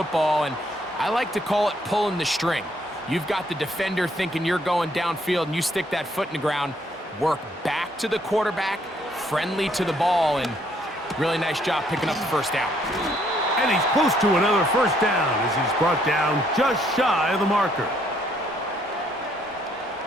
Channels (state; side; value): normal; both; correlation 0.68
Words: and I like to call it pulling the string. You've got the defender thinking you're going downfield, and you stick that foot in the ground, work back to the quarterback, friendly to the ball, and really nice job picking up the first down. And he's close to another first down as he's brought down just shy of the marker.